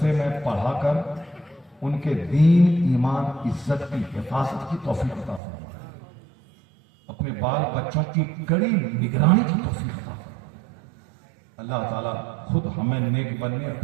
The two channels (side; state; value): left; drops out; at 5.4 s